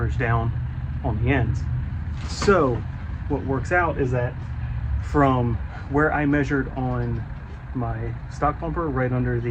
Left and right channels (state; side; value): identical; both; correlation 1.00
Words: down on the ends. So what works out is that from where I measured on my stock bumper, right under